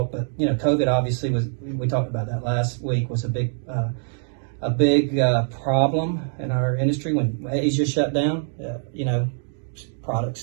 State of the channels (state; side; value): silent; left; digital silence